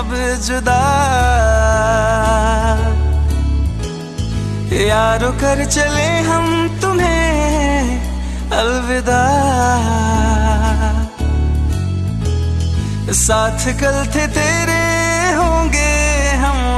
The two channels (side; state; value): both; identical; correlation 1.00